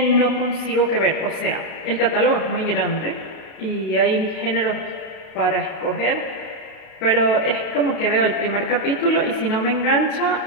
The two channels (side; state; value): right; late; 32 ms